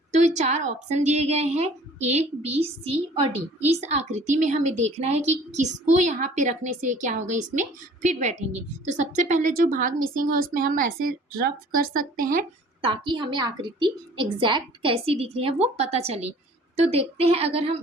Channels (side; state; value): both; normal; correlation 0.51